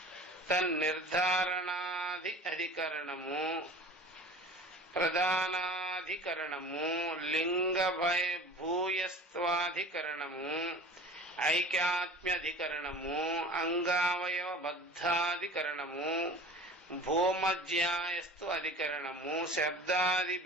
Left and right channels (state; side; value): normal; both; correlation 0.40